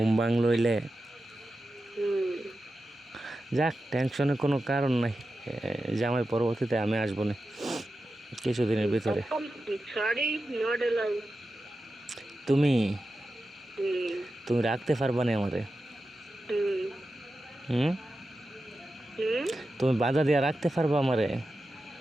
ভাঙ লইলে। হুম। যাক, টেনশনের কোনো কারণ নাই। জামাই পরবর্তীতে আমি আসবো না কিছুদিনের ভিতরে। Sorry, not allow. তুমি হুম। তুমি রাখতে পারবা না আমারে? হুম। হুম? হুম। তুমি বাধা দিয়া রাখতে পারবা আমারে?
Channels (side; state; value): both; normal; correlation 0.92